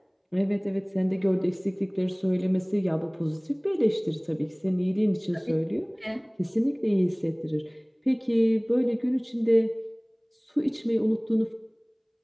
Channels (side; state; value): both; identical; correlation 1.00